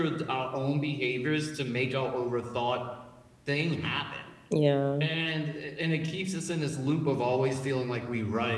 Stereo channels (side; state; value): both; identical; correlation 1.00